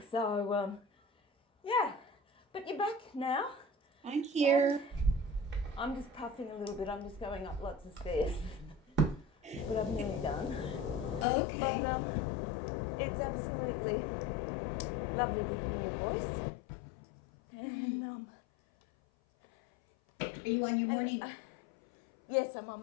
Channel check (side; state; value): right; drops out; at 11.2 s